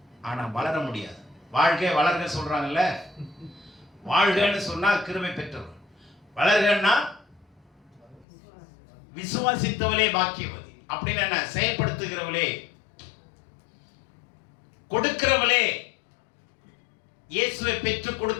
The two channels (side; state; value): right; drops out; at 8.2 s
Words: ஆனா வளர முடியாது. வாழ்க வளர்க சொல்றாங்கல்ல, வாழ்கன்னு சொன்னா கிருபை பெற்றவர், வளர்கன்னா விசுவாசித்தவளே பாக்கியவதி. அப்படின்னு என்ன? செயல்படுத்துகிறவளே, கொடுக்கிறவளே. இயேசுவை பெற்று